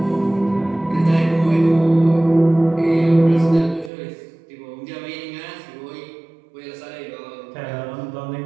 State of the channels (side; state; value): left; drops out; at 3.9 s